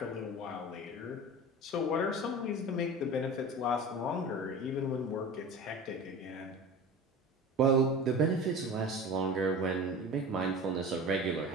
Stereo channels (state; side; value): normal; both; correlation 0.34